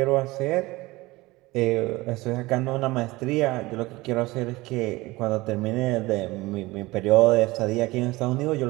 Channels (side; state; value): left; quieter; 20.6 dB